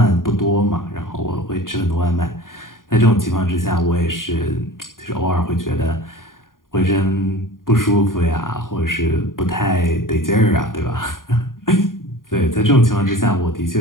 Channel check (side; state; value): right; late; 0.90 ms